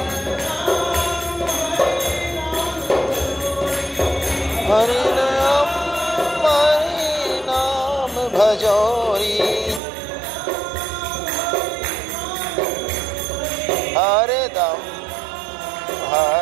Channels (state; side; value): drops out; left; at 9.8 s